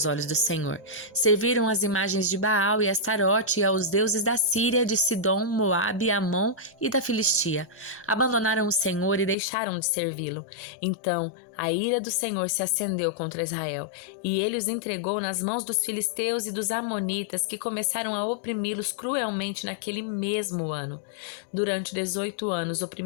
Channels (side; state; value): right; drops out; at 9.3 s